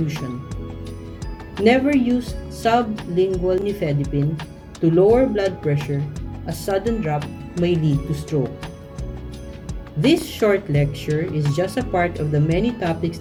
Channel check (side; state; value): both; identical; correlation 1.00